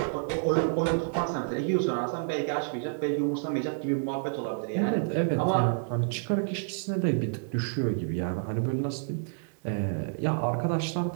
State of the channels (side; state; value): left; silent; digital silence